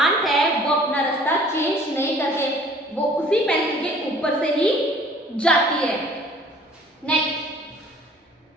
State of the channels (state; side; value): normal; both; correlation 0.53